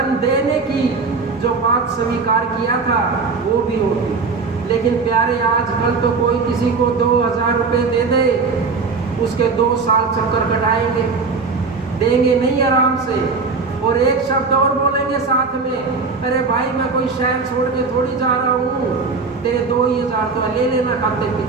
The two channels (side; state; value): left; quieter; 4.5 dB